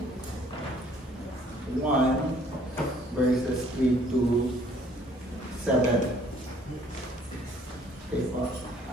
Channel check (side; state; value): both; normal; correlation 0.60